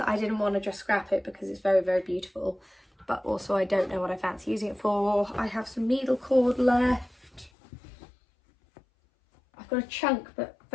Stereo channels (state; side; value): drops out; right; at 7.5 s